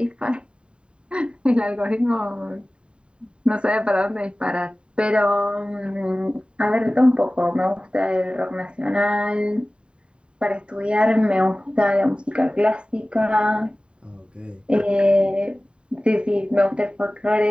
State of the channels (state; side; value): late; left; 0.053 ms